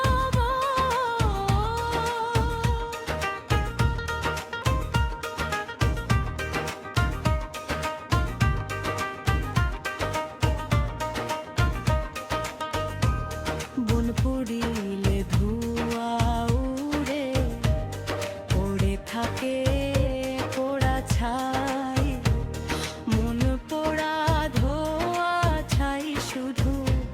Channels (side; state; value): both; identical; correlation 1.00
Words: বন পুড়িলে ধোঁয়া উড়ে পড়ে থাকে পোড়া ছাই মন পোড়া ধোঁয়া ছাই শুধু